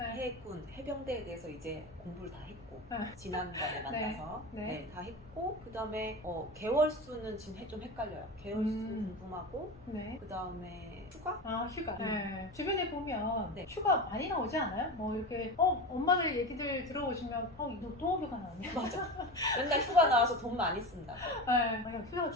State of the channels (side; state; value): both; normal; correlation 0.25